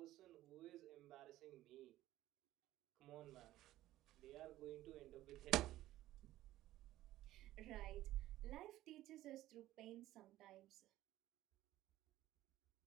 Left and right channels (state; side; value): quieter; left; 15.0 dB